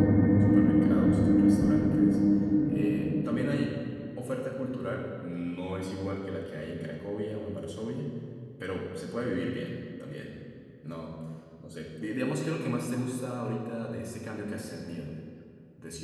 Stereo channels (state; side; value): identical; both; correlation 1.00